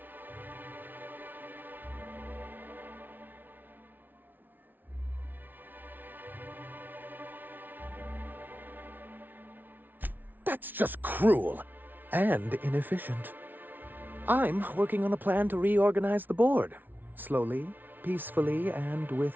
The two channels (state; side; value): late; left; 0.088 ms